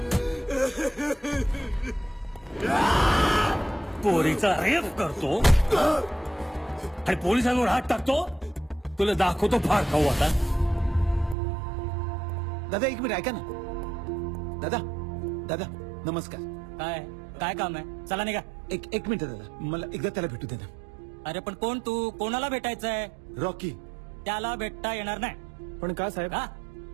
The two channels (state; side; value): drops out; left; at 11.4 s